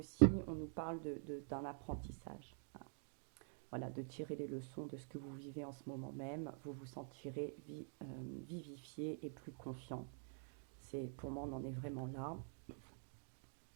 on nous parle d'un apprentissage. Hein. Voilà, de tirer les leçons de ce que vous vivez en ce moment même. Vous vous sentirez vivifié et plus confiant. Pour moi, on en est vraiment là.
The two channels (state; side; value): silent; left; digital silence